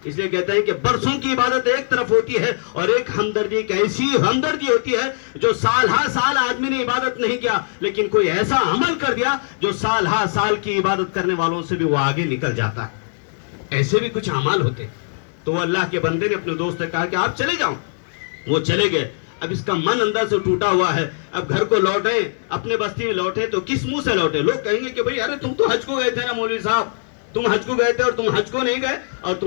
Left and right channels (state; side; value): silent; right; digital silence